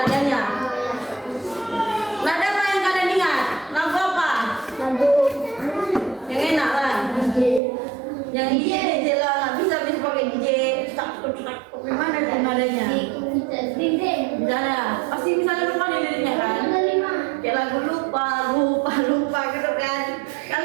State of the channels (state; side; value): drops out; left; at 7.6 s